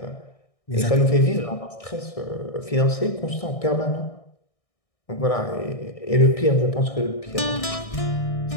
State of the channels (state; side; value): late; right; 1.6 ms